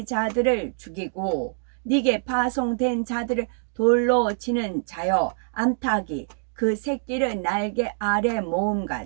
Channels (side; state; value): left; silent; digital silence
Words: 죽이고 네게 파송된 자들을 돌로 치는 자여 암탉이 그 새끼를 날개 아래